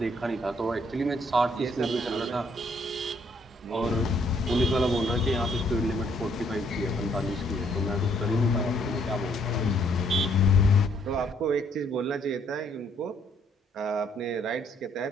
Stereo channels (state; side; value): normal; both; correlation 0.67